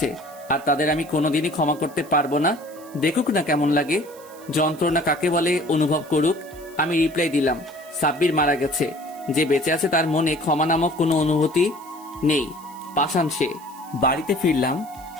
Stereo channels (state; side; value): noise; right; hiss, 22 dB below the sound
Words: আর তাদের আমি কোনোদিনই ক্ষমা করতে পারবো না। দেখুক না কেমন লাগে, যন্ত্রণা কাকে বলে অনুভব করুক। আমি রিপ্লাই দিলাম, সাব্বির মারা গেছে, যে বেঁচে আছে তার মনে ক্ষমা নামক কোনো অনুভূতি নেই। পাষাণ সে। বাড়িতে ফিরলাম,